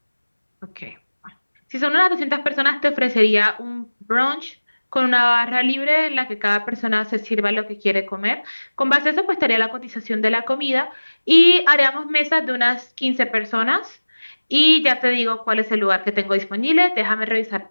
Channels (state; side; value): inverted; both; correlation -1.00